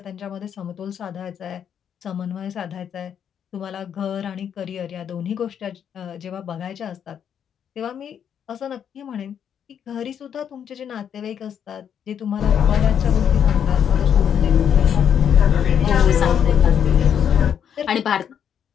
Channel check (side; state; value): right; quieter; 8.5 dB